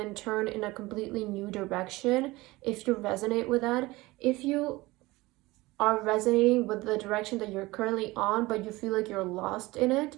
turn in a completely new direction if you resonate with that. If you are resonating with the direction that you're currently on, but you feel like you're lost in it,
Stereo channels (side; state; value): left; quieter; 20.6 dB